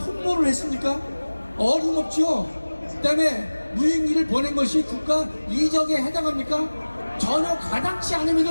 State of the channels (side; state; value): both; inverted; correlation -1.00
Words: 했습니까? 어림없죠. 그다음에 무인기를 보낸 것이 국가 이적에 해당합니까? 전혀 가당치